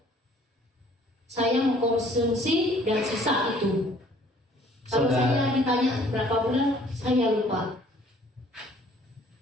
Saya mengkonsumsi dan sisa itu. Kalau saya ditanya berapa bulan, saya lupa.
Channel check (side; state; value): both; normal; correlation 0.57